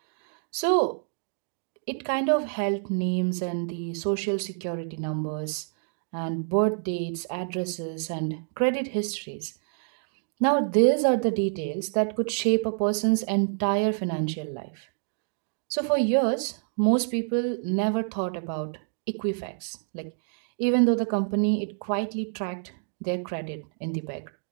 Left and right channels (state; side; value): silent; left; digital silence